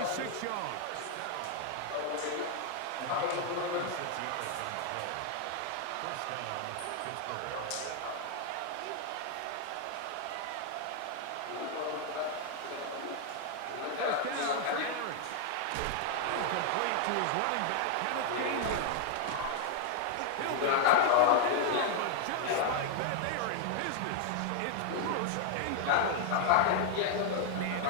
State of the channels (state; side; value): different; both; correlation 0.00